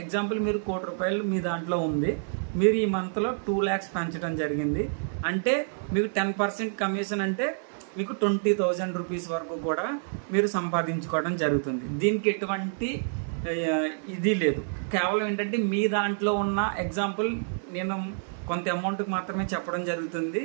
ఎగ్జాంపుల్, మీరు 1 కోటి రూపాయలు మీ దాంట్లో ఉంది, మీరు ఈ మంత్లో 2 lakhs పెంచడం జరిగింది. అంటే మీకు 10% కమిషన్, అంటే మీకు 20,000 రూపీస్ వరకు కూడా మీరు సంపాదించుకోవడం జరుగుతుంది. దీనికి ఎటువంటి ఇది లేదు. కేవలం ఏంటంటే మీ దాంట్లో ఉన్న ఎగ్జాంపుల్ నేను కొంత అమౌంట్కి మాత్రమే చెప్పడం జరుగుతుంది.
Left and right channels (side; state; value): left; silent; digital silence